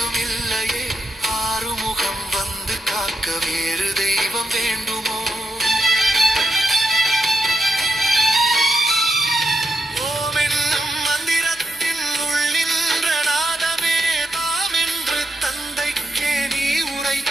இல்லையே ஆறுமுகம் வந்து காக்க வேறு தெய்வம் வேண்டுமோ ஓம் என்னும் மந்திரத்தின் உள்ளின்ற நாதமே தாம் என்று தந்தைக்கே நீ உரைத்த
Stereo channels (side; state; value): both; normal; correlation 0.83